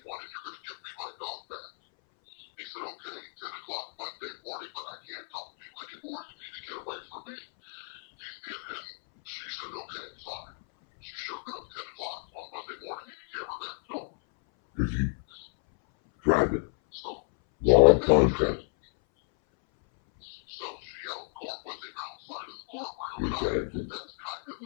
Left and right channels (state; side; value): silent; right; 57 dB below the other